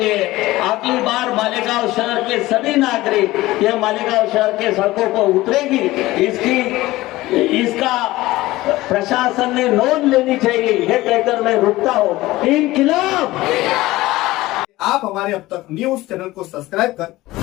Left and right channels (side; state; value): right; quieter; 18.0 dB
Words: अगली बार मालेगांव शहर के सभी नागरिक ये मालेगांव शहर के सड़कों पर उतरेगी। इसका प्रशासन ने नोंद लेनी चाहिए, ये कहकर मैं रुकता हूँ। इनकलाब। आप हमारे अब तक न्यूज चैनल को सब्सक्राइब कर